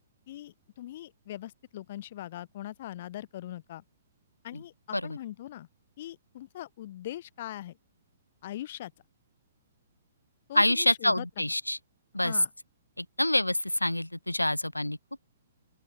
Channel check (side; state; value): both; inverted; correlation -0.97